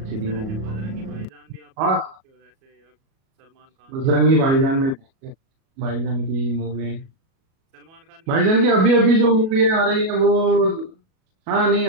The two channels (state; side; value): late; left; 37 ms